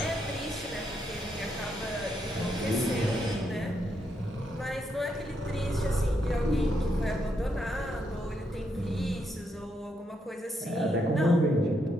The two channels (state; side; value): normal; both; correlation 0.79